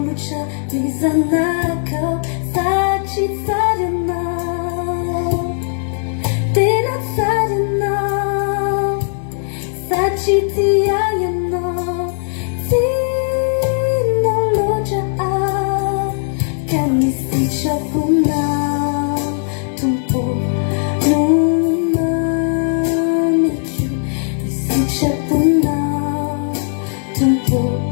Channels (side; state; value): right; silent; 57 dB below the other